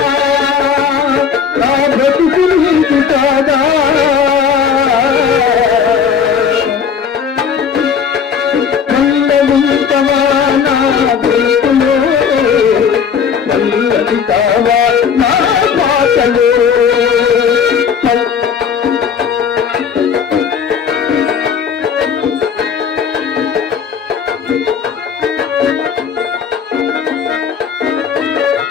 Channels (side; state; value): right; quieter; 6.9 dB